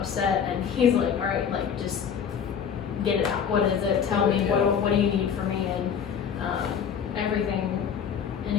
and he's like, all right, like, just get it out. What is it? Tell me, what do you need from me? And everything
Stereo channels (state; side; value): quieter; right; 7.5 dB